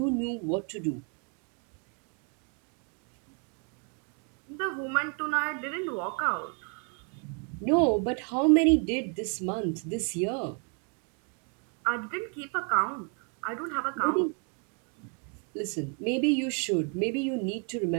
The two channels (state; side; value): quieter; left; 39.2 dB